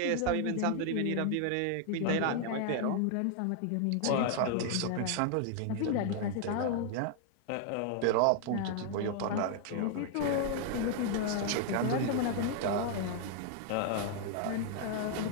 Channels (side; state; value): both; different; correlation 0.00